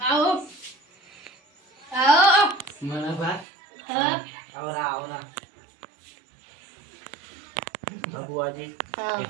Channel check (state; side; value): drops out; left; at 3.5 s